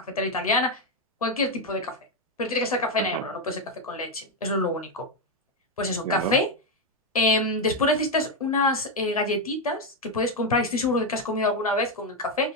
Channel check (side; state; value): both; normal; correlation 0.05